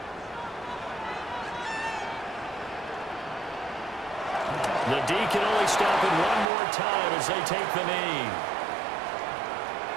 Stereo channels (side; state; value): left; drops out; at 6.5 s